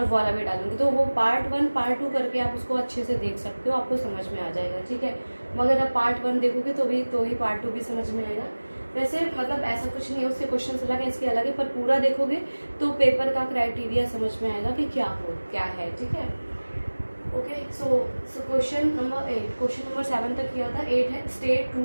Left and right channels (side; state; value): both; inverted; correlation -1.00